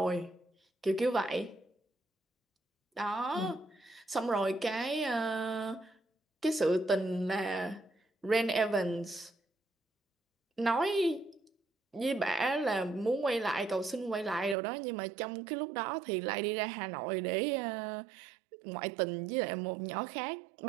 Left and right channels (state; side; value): drops out; left; at 14.6 s